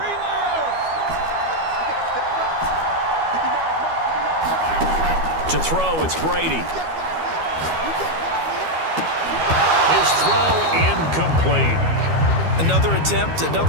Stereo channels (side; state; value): left; late; 12 ms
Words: To throw, it's Brady. His throw incomplete. Another attempt,